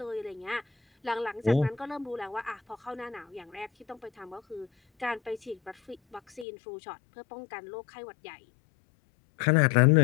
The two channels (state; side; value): drops out; right; at 6.5 s